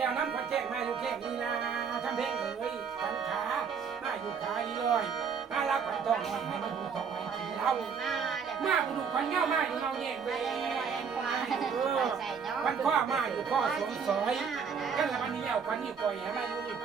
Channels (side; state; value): left; quieter; 6.3 dB